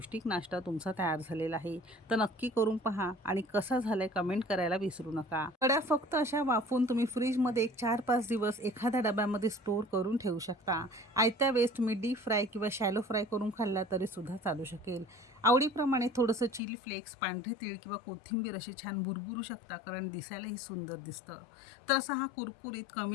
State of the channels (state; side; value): drops out; right; at 16.6 s